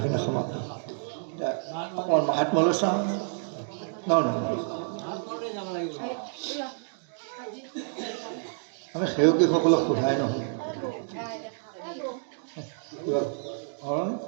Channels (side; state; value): left; silent; digital silence